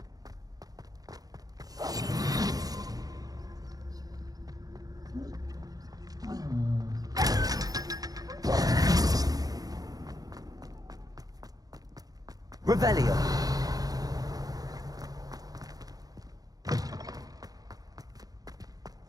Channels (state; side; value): late; left; 0.18 ms